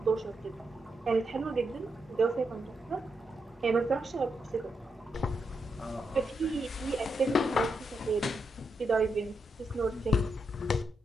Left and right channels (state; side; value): normal; both; correlation 0.83